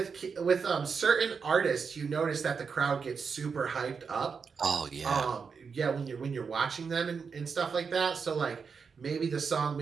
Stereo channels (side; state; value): left; quieter; 5.7 dB